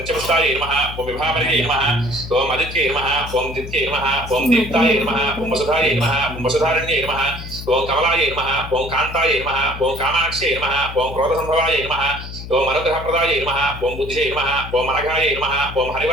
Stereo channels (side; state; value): left; noise; hum, 10 dB below the sound